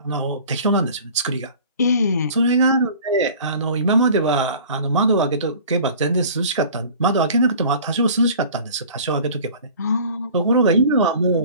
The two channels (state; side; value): inverted; both; correlation -0.45